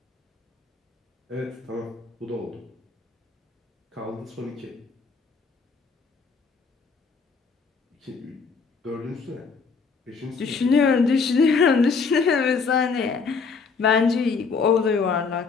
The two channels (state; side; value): quieter; right; 5.0 dB